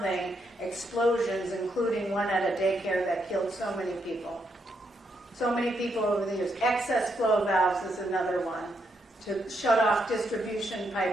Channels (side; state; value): both; normal; correlation 0.79